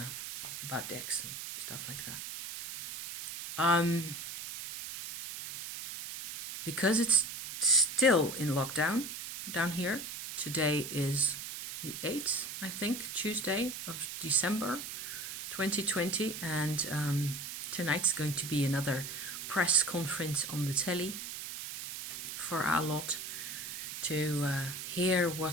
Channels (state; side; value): noise; right; hiss, 8 dB below the sound